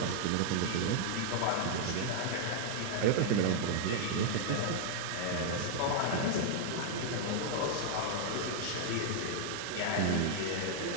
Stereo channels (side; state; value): both; different; correlation -0.01